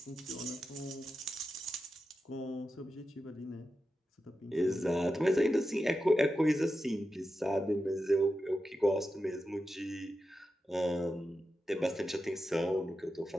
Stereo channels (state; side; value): normal; both; correlation 0.90